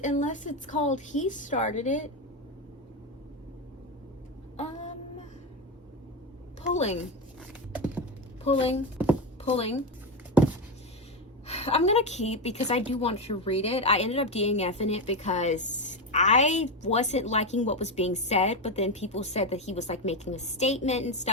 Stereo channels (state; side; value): normal; both; correlation 0.12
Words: unless it's called He Started It. Pulling, pulling, pulling. I'm gonna keep because I do want to read it. I ended up DNFing it because I wasn't liking what was being said, but then people said that he was like making a statement and